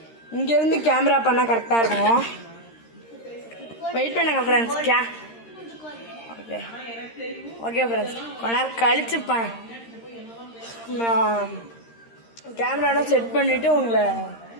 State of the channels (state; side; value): late; right; 13 ms